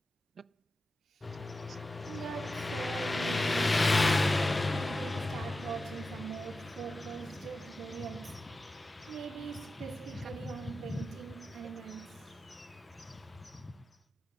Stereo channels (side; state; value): both; normal; correlation 0.93